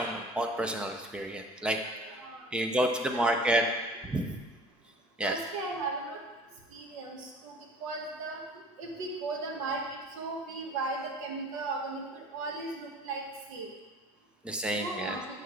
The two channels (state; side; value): normal; both; correlation 0.47